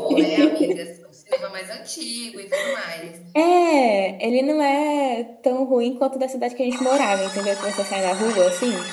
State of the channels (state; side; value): identical; both; correlation 1.00